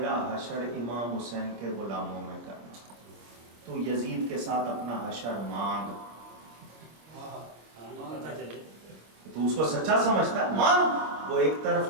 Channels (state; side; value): late; left; 25 ms